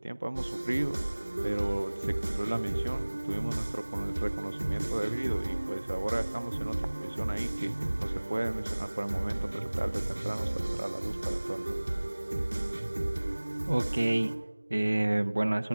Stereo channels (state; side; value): inverted; both; correlation -1.00